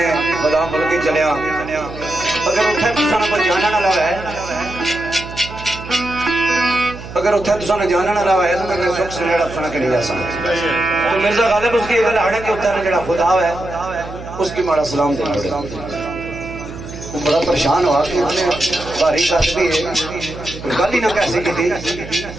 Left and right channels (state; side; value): noise; right; hum, 13 dB below the sound